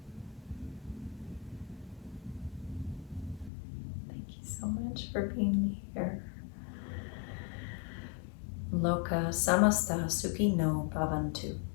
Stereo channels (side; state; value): right; drops out; at 3.5 s